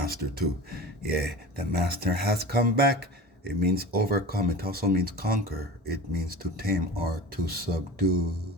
too. Yeah, the master has come back. It means overcome. It also means conquer. It means to tame or to subdue.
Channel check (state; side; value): normal; both; correlation 0.35